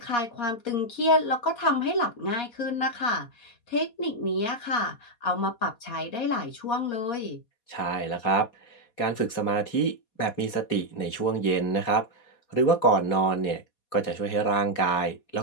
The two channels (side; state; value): right; late; 4.2 ms